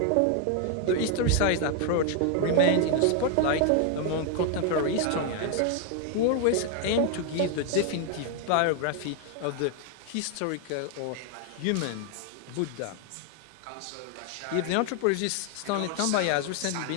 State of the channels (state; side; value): different; both; correlation 0.00